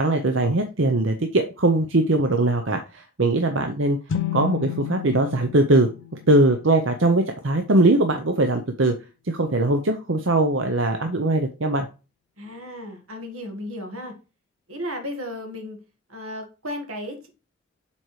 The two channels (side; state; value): both; normal; correlation 0.26